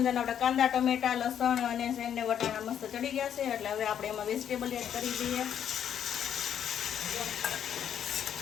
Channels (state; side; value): quieter; right; 9.2 dB